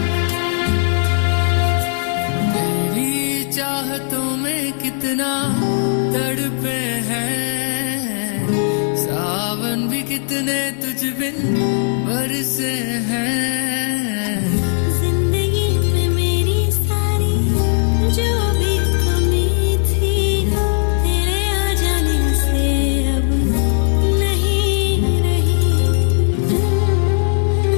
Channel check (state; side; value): silent; right; 67 dB below the other